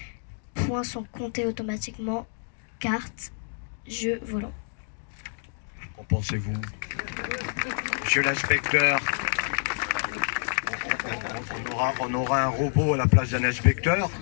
points sont comptés automatiquement, cartes, jeux volants. Qu'en pensez-vous? Monsieur l'inspecteur, on aura un robot à la place d'un inspecteur,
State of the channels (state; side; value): silent; right; digital silence